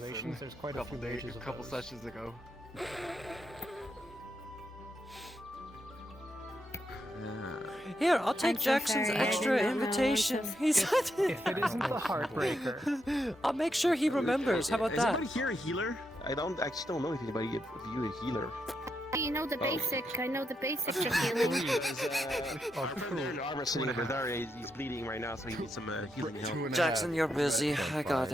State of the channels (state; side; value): normal; both; correlation 0.82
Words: there's quite a few mages a of couple those. sessions ago. Here, I'll take I'm so Jackson's sorry, I extra did not know invitation. this. He's If it isn't the heartbreaker, I'll make sure he remembers. How about Is that? anybody here a healer? I actually don't know if anybody of you a healer. You know the Oh. basic. I know the basics of healing. Our friend there in the armor sitting over there, he's bleeding right now, so he needs some healing help. Jackson, you're busy. I got